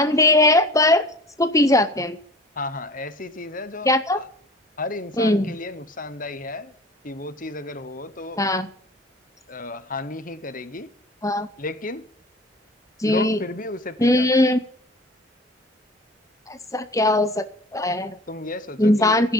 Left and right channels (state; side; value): normal; both; correlation 0.41